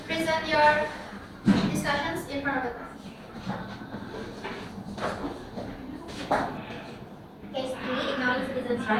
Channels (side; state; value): both; identical; correlation 1.00